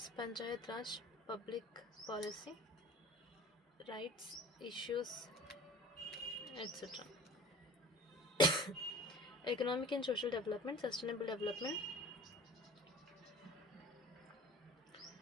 Panchayat Raj, public policy, rights, issues, etc. Economic and social development, sustainable development,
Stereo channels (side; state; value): both; normal; correlation 0.45